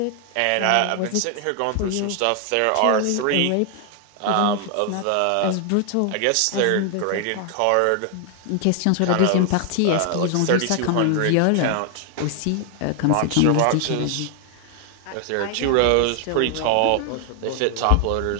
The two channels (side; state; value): both; different; correlation 0.00